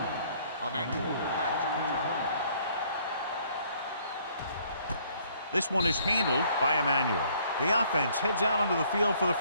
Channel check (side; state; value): both; inverted; correlation -0.62